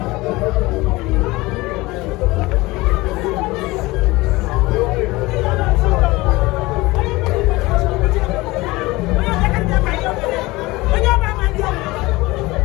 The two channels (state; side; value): quieter; right; 21.0 dB